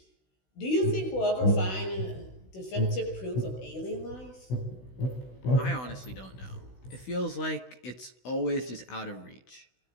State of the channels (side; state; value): right; late; 16 ms